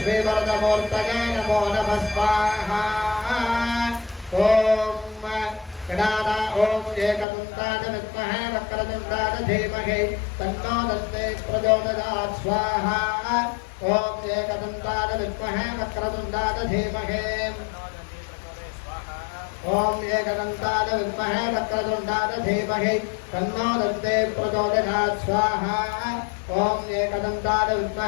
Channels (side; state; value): right; drops out; at 7.2 s